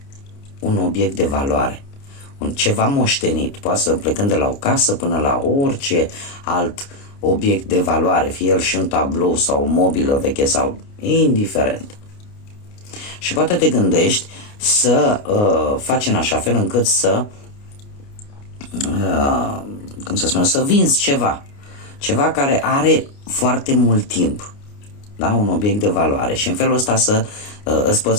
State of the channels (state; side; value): late; right; 29 ms